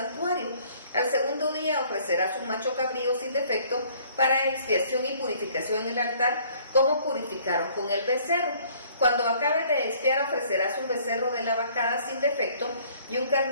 Al segundo día ofrecerás un macho cabrío sin defecto para expiación y purificación en el altar, como purificaron con el becerro. Cuando acabes de expiar, ofrecerás un becerro de la vacada sin defecto y un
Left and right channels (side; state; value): both; inverted; correlation -0.58